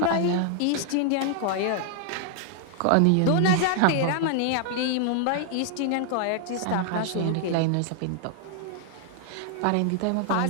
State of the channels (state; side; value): different; both; correlation 0.00